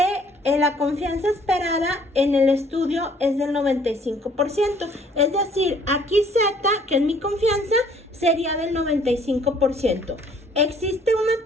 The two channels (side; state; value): both; normal; correlation 0.59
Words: la confianza esperada en el estudio es del 95%. Es decir, aquí Z, que es mi confianza, sería del 95%. Existe una